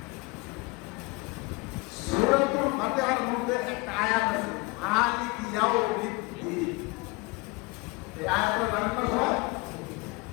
মধ্যে একটা আয়াত আছে, মালিক ইয়াউমিদ্দিন। এই আয়াতটা জানেন না সবাই?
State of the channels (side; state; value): right; quieter; 25.5 dB